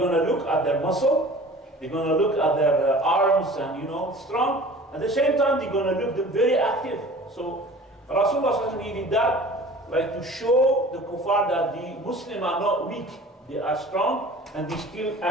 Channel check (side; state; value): both; normal; correlation 0.44